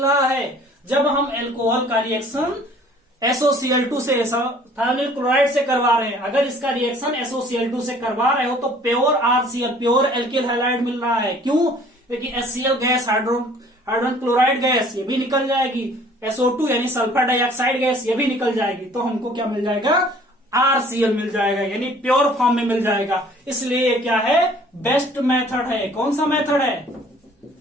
रहा है, जब हम एल्कोहल का रिएक्शन SOCl2 से थायोनिल क्लोराइड से करवा रहे हैं। अगर इसका रिएक्शन SOCl2 से करवा रहे हो तो pure RCl pure alkyl halide मिल रहा है। क्यों, क्योंकि HCl gas, hydrogen chloride gas ये भी निकल जाएगी, SO2 यानी सल्फर डाइऑक्साइड गैस ये भी निकल जाएगी, तो हमको क्या मिल जाएगा, RCl मिल जाएगा, यानी प्योर फॉर्म में मिल जाएगा। इसलिए क्या है, बेस्ट मेथड है। कौन सा मेथड है,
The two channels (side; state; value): both; normal; correlation 0.54